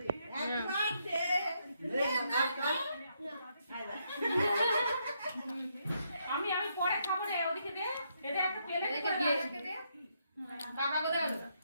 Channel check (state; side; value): inverted; both; correlation -0.77